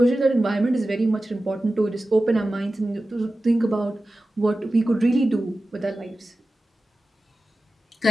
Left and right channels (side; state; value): both; normal; correlation 0.95